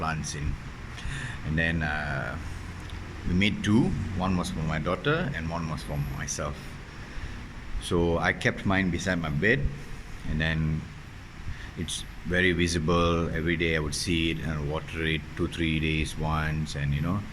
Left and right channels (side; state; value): both; identical; correlation 1.00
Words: in, and then we made two. One was for my daughter, and one was for myself. So I kept mine beside my bed, and then it's very visible every day. I would see it and water it 2 3 days once, and